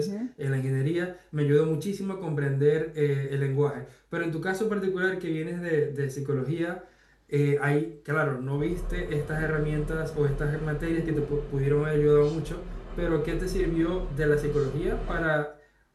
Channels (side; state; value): both; identical; correlation 1.00